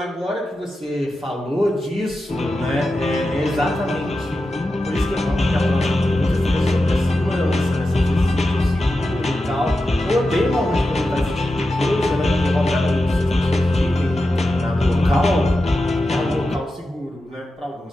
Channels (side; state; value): both; normal; correlation 0.91